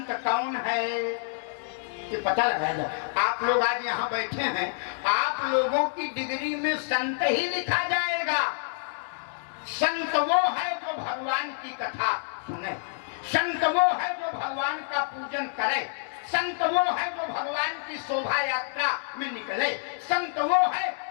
कौन है, ये पता लगाया जाए। आप लोग आज यहाँ बैठे हैं, आप लोगों की डिग्री में संत ही लिखा जाएगा। संत वो है जो भगवान की कथा सुने, संत वो है जो भगवान का पूजन करे, संत वो है जो भगवान की शोभा यात्रा में निकले, संत वो है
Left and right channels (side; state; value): right; silent; 60 dB below the other